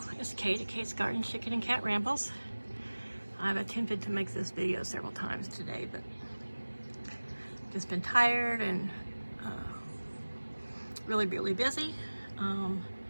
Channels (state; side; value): inverted; both; correlation -1.00